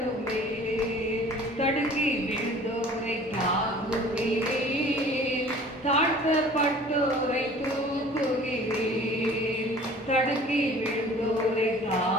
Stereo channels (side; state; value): both; normal; correlation 0.48